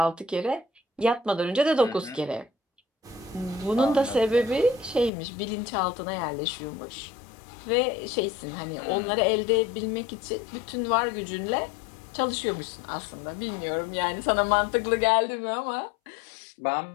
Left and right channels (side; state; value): right; drops out; at 5.1 s